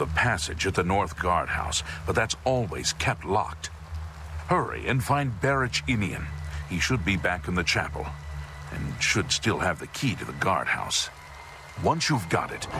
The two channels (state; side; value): identical; both; correlation 1.00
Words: passage at the North Guardhouse, but that's always kept locked. Hurry and find Barich Inian. He should be back in the chapel, and should still have the key to the guardhouse. Once you've got it,